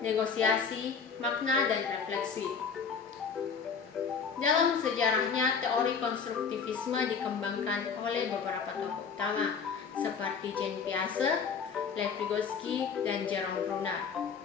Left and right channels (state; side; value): quieter; right; 6.0 dB